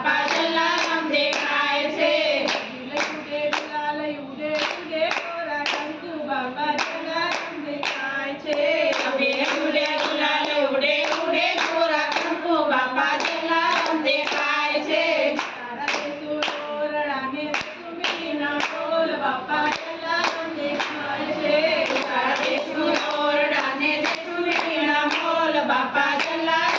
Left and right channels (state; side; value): identical; both; correlation 1.00